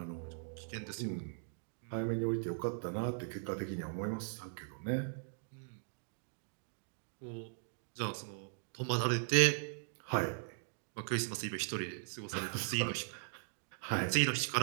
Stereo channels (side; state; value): left; silent; digital silence